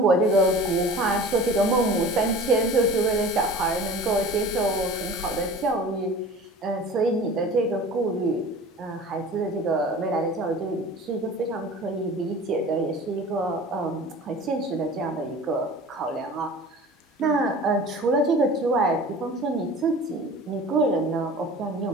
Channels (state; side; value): normal; both; correlation 0.41